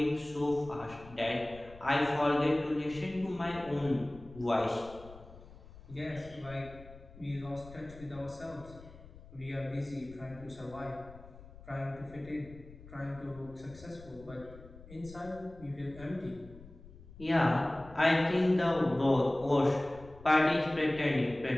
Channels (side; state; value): left; noise; rumble, 19 dB below the sound